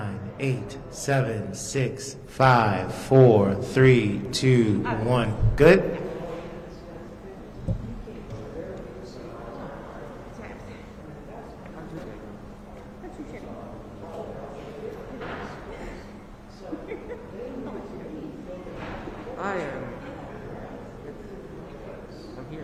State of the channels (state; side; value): identical; both; correlation 1.00